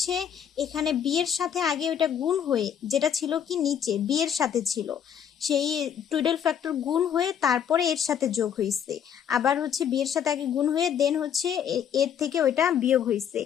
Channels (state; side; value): quieter; right; 8.6 dB